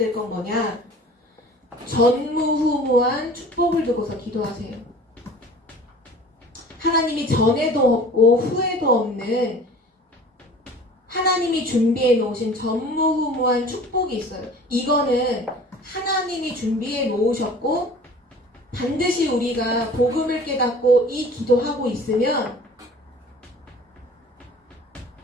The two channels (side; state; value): both; normal; correlation 0.45